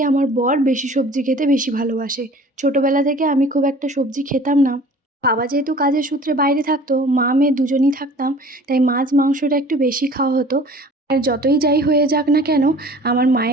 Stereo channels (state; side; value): normal; both; correlation 0.47